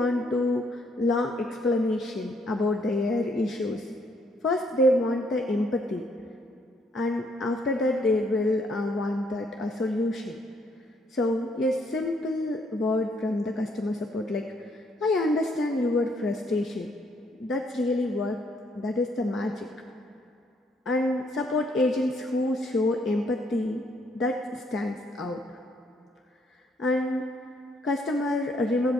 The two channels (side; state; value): both; normal; correlation 0.69